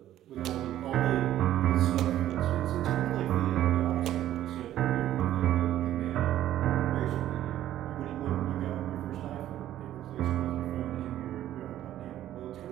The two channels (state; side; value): quieter; left; 12.7 dB